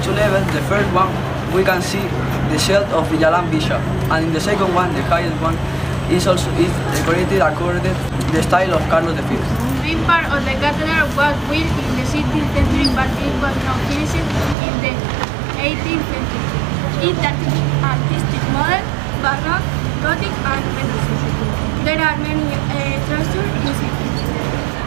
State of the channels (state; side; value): drops out; left; at 14.6 s